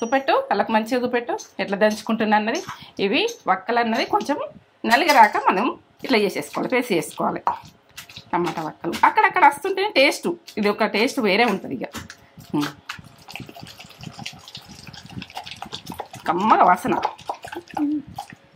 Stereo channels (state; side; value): identical; both; correlation 1.00